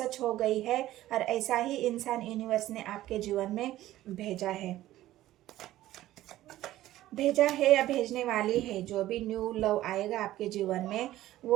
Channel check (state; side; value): quieter; left; 14.8 dB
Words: हो गई है, और ऐसा ही इंसान यूनिवर्स ने आपके जीवन में भेजा है या भेजने वाली है। जो भी न्यू लव आएगा आपके जीवन में